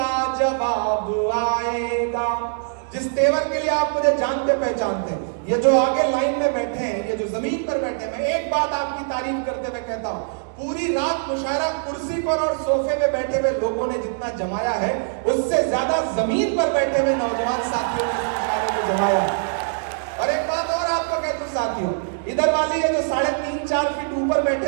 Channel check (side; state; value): left; silent; digital silence